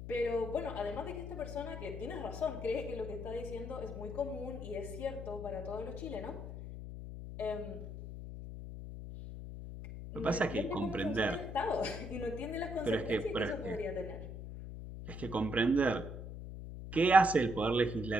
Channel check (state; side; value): noise; left; hum, 9 dB below the sound